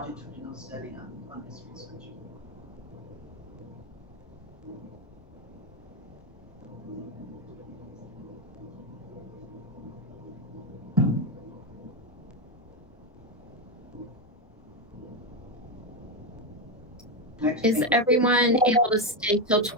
study on this research. Next Is week. everyone able to stay till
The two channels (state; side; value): normal; both; correlation 0.09